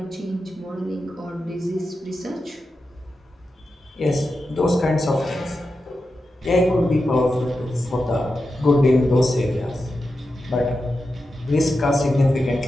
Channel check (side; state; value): both; normal; correlation 0.90